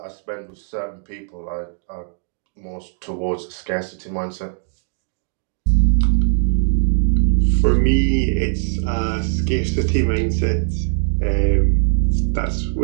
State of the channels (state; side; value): silent; left; digital silence